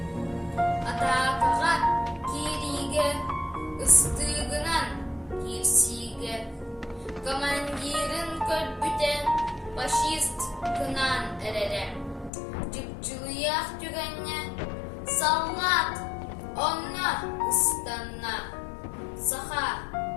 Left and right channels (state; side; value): drops out; right; at 12.3 s